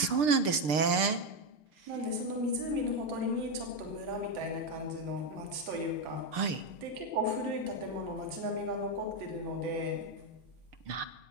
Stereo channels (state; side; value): late; left; 6.7 ms